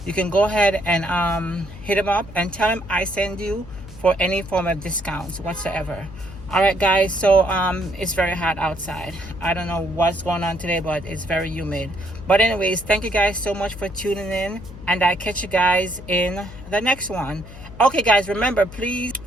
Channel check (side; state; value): left; noise; hum, 16 dB below the sound